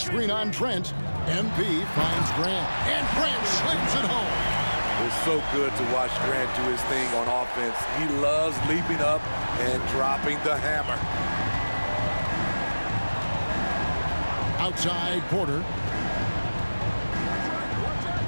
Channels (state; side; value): inverted; both; correlation -1.00